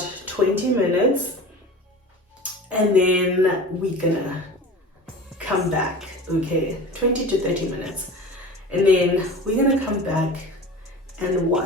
20 minutes, and then we're gonna come back. Okay, 20 to 30 minutes, and then we're gonna come back and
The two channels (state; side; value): normal; both; correlation 0.36